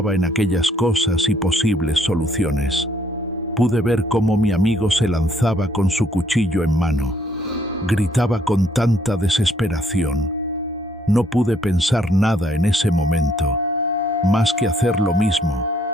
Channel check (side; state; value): both; normal; correlation 0.67